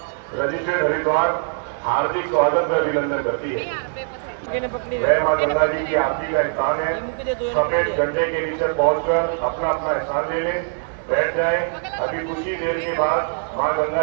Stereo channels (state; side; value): silent; left; 61 dB below the other